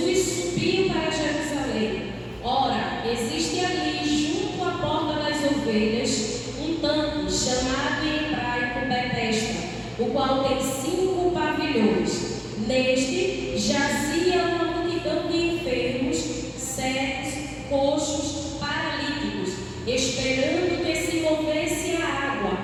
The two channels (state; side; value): identical; both; correlation 1.00